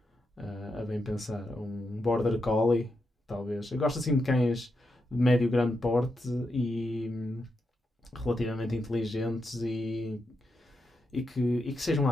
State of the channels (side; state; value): both; normal; correlation 0.85